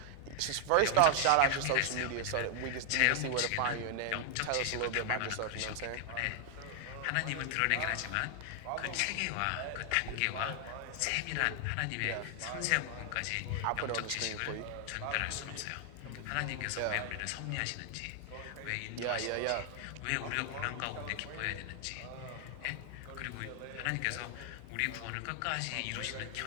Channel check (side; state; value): both; different; correlation 0.00